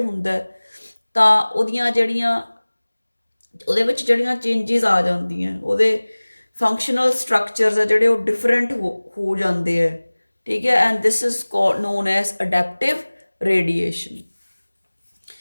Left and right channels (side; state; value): both; inverted; correlation -1.00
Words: ਤਾਂ ਉਹਦੇ ਵਿੱਚ ਜਿਹੜੀਆਂ ਚੇਂਜਿਸ ਆ ਜਾਂਦੀਆਂ, ਉਹਦੇ ਫੰਕਸ਼ਨਲ ਸਟਰਕਚਰਸ ਆ ਜਿਹੜੇ ਉਹ ਡਿਫਰੈਂਟ ਹੋ ਜਾਂਦੇ ਹੈ। ਠੀਕ ਹੈ, and this is known as adaptive radiation.